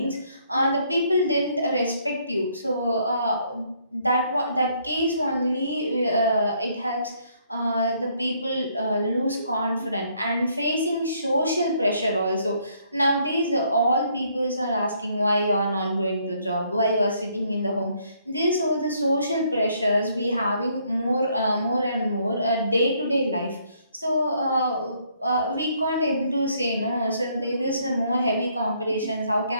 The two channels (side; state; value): both; inverted; correlation -0.68